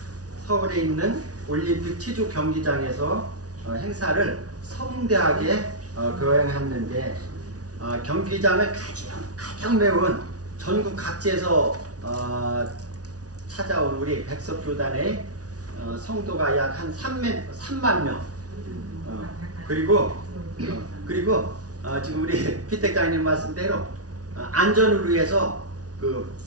서울에 있는 올림픽 체조 경기장에서 행사를 성대하게 거행했는데, 경기장을 가장 메운 전국 각지에서 찾아온 우리 백석교단의 성도가 약 한 3만 명. 그리고 지금 우리 피택장님 말씀대로 안전을 위해서 그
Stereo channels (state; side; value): late; left; 0.68 ms